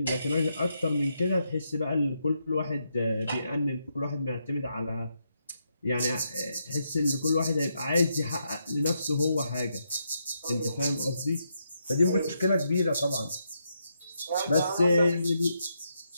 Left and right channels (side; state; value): both; inverted; correlation -0.81